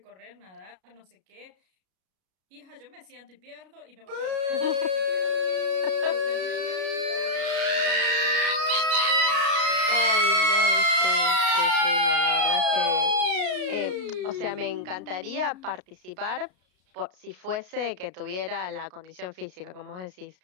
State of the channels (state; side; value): late; left; 33 ms